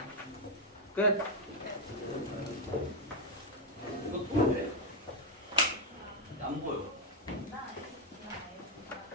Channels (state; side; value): normal; both; correlation 0.03